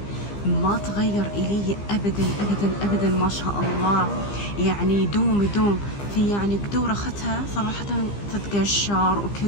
ما تغير إلي أبدا، ما شاء الله. يعني يدوم في، يعني قدور أخذتها صراحة تتقشر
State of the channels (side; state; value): right; late; 15 ms